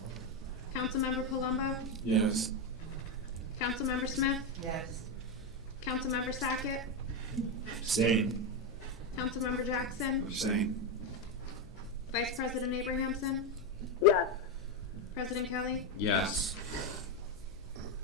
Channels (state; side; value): noise; left; hum, 24 dB below the sound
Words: Councilmember Palumbo. Yes. Councilmember Smith. Yes. Councilmember Sackett. Abstain. Councilmember Jackson. Abstain. Vice President Abrahamson. Yes. President Kelly. Yes.